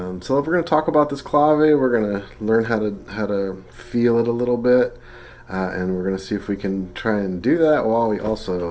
we're going to talk about this clave. We're going to learn how to feel it a little bit, and we're going to see if we can try and do that while we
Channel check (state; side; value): identical; both; correlation 1.00